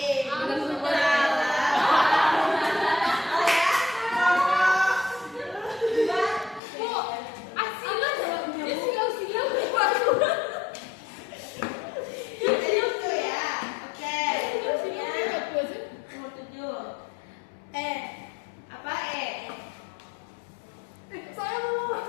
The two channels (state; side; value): drops out; right; at 6.6 s